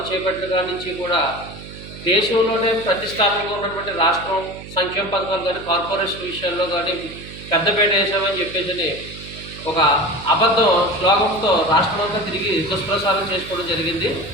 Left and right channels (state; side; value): noise; right; hum, 14 dB below the sound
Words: చేపట్టిన కాడి నుంచి కూడా దేశంలోనే ప్రతిష్టాత్మకంగా ఉన్నటువంటి రాష్ట్రం సంక్షేమ పథకాలు కానీ కార్పొరేషన్ విషయాల్లో కానీ పెద్దపేట వేసామని చెప్పేసి ఒక అబద్ధం శ్లోకంతో రాష్ట్రమంతా తిరిగి దుష్ప్రచారం చేసుకోవడం జరిగింది.